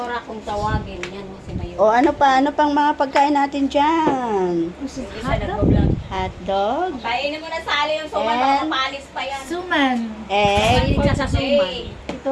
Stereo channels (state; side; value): identical; both; correlation 1.00